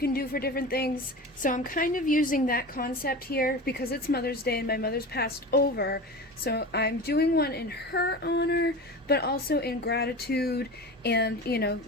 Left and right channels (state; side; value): normal; both; correlation 0.31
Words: do for different things. So I'm kind of using that concept here because it's Mother's Day and my mother's passed over. So I'm doing one in her honor, but also in gratitude. And you know,